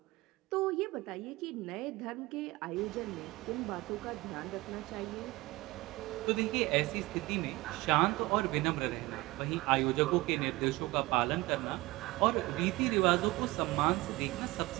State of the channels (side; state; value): left; quieter; 20.8 dB